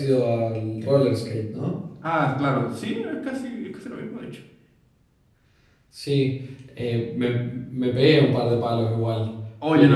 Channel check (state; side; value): identical; both; correlation 1.00